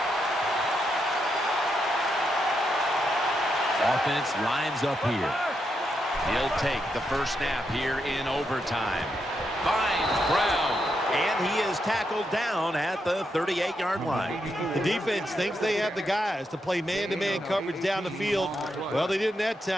Offense lines up here. He'll take the first snap here in overtime. Finds Brown. And he is tackled down at the 38-yard line. The defense thinks they have the guys to play man-to-man coverage down the field. Well, they didn't that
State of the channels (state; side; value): normal; both; correlation 0.82